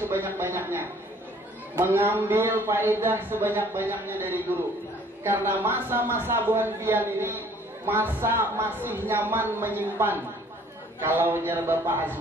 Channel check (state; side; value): normal; both; correlation 0.56